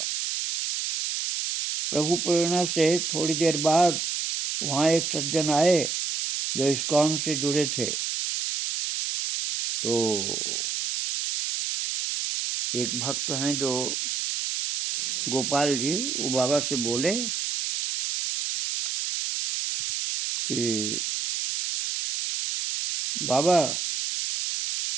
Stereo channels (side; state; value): right; noise; hiss, 2 dB below the sound